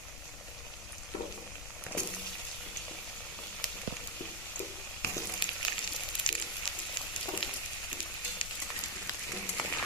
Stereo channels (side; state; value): left; noise; rumble, 8 dB below the sound